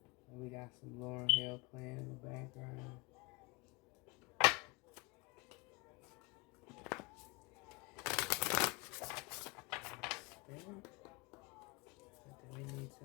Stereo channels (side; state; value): right; quieter; 26.4 dB